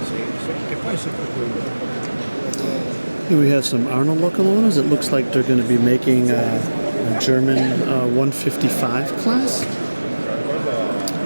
che poi è sempre quello. Here we have some Arnold locomotives. It looks like they're going to be making a German 155 class.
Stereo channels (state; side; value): inverted; both; correlation -1.00